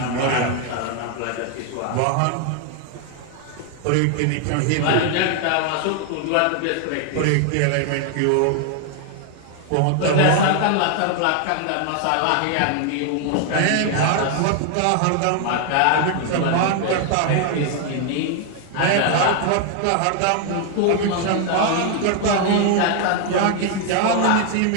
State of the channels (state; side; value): different; both; correlation 0.00